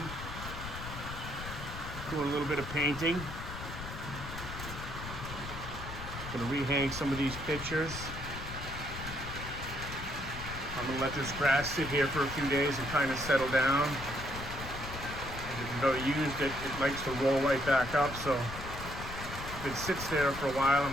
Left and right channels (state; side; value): noise; left; rumble, 9 dB below the sound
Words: Doing a little bit of painting. Gonna rehang some of these pictures. I'm gonna let this grass sit here for a few days and kind of settle down. As you can go used it likes to roll right back up, so if it sits there for a while,